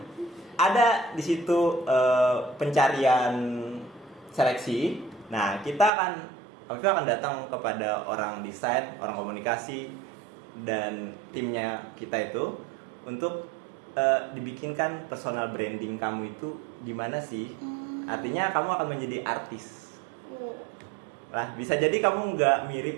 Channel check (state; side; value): drops out; left; at 5.9 s